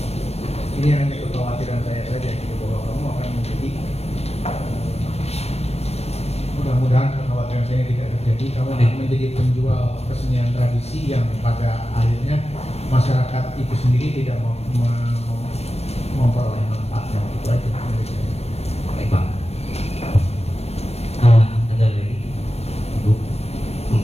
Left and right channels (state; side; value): late; right; 0.31 ms